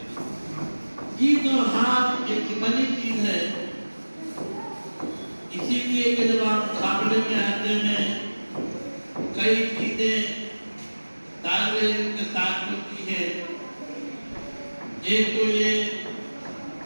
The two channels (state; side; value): inverted; both; correlation -1.00